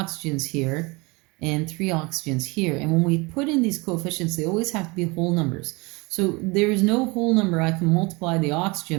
here and 3 oxygens here. And when we put in these coefficients, they always have to be whole numbers. So there is no whole number I can multiply the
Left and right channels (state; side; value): quieter; left; 26.3 dB